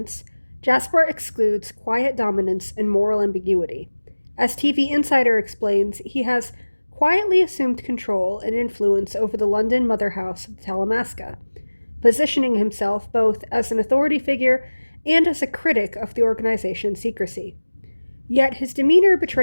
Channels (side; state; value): both; inverted; correlation -1.00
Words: Jasper excludes quiet dominance and moral ambiguity. As TV Insider explains, he has quietly assumed control and influence over the London mother house of the Talamasca, positioning himself both as an authority figure and as a critic of the organization's secrecy. Yet his demeanor